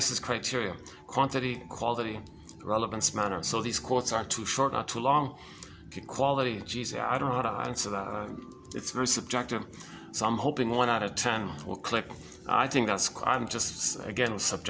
criteria: quantity, quality, relevance, manner. So these quotes aren't too short, not too long. Okay, quality, geez, I don't know how to answer that. It's very subjective. So I'm hoping 1 out of 10 will click. I think that's, I'm just, again,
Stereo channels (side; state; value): both; identical; correlation 1.00